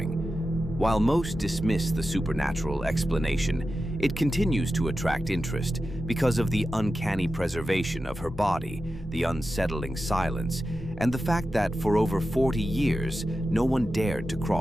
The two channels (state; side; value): normal; both; correlation 0.92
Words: While most dismiss the supernatural explanation, it continues to attract interest because of the uncanny preservation of her body, the unsettling silence, and the fact that for over 40 years, no one dared to